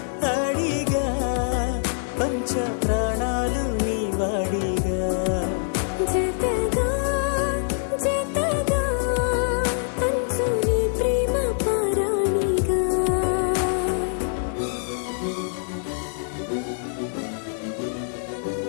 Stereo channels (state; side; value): silent; right; digital silence